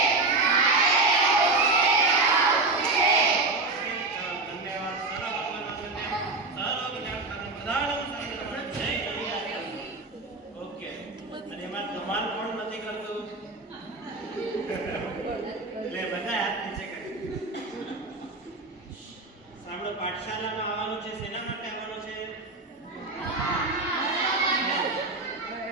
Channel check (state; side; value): quieter; left; 3.4 dB